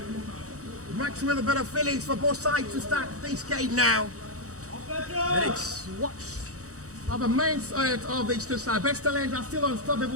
Much with a bit of feelings for both sides to start this game now. And it's what are the mindset of these two sides. Best Talent are still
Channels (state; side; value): late; left; 0.65 ms